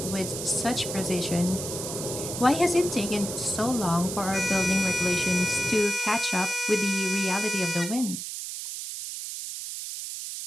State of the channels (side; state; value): right; noise; hiss, 6 dB below the sound